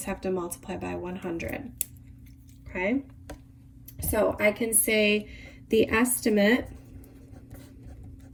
have to multiply by 100. Okay? So I can say the estimate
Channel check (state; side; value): identical; both; correlation 1.00